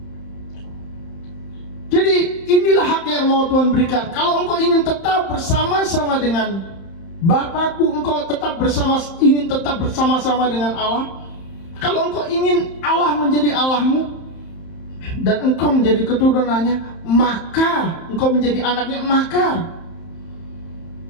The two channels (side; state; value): right; late; 31 ms